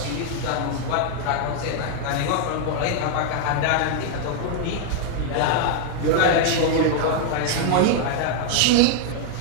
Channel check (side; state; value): both; different; correlation 0.00